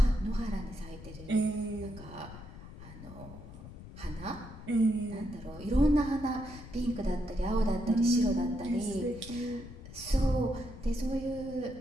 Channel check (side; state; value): left; noise; rumble, 15 dB below the sound